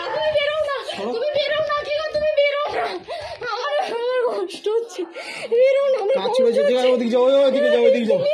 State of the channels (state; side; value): identical; both; correlation 1.00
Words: তুমি বেরো না, কি গো, তুমি বেরো না। আমার কষ্ট হচ্ছে, বেরো না। কাজ ছিল যেদিকে, ওদিকে যাও, ওইদিকে